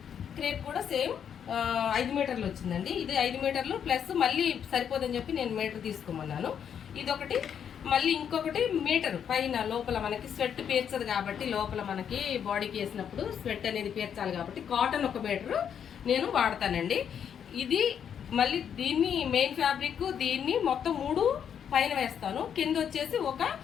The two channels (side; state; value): right; quieter; 8.3 dB